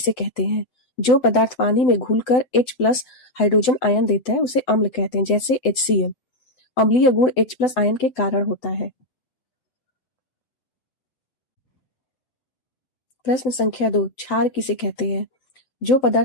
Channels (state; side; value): late; right; 8.0 ms